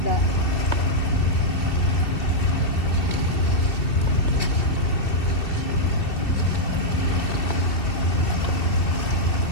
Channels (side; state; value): right; late; 2.7 ms